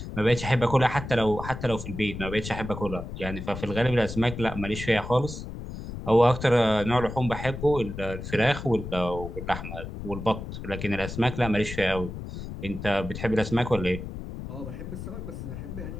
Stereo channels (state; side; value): noise; left; rumble, 8 dB below the sound